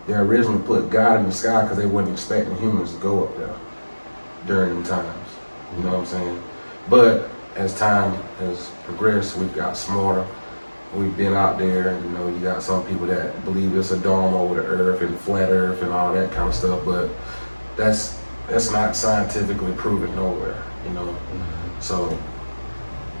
originally put God in the sky because they weren't expecting humans to go up there during them times. You know what I'm saying? But as time has progressed, we've got smarter. We've been out there, and you got some people that believe it's a dome over the earth and flat earth and all that kind of stuff, but that's not scientifically proven nowhere, So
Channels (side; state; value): both; inverted; correlation -1.00